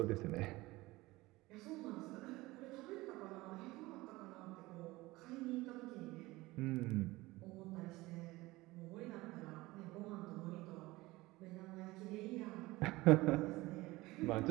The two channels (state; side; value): quieter; left; 20.1 dB